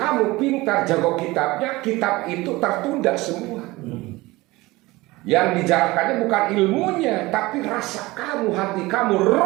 pintar jago kitabnya, kitab itu tertunda semua. Yang dijarahkannya bukan ilmunya, tapi rasa kamu, hati kamu,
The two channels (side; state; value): left; quieter; 20.7 dB